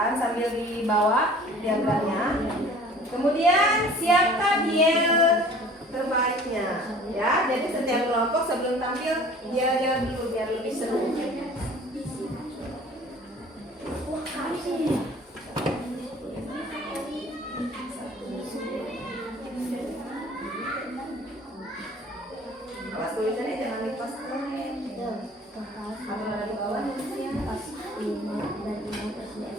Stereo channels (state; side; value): normal; both; correlation 0.48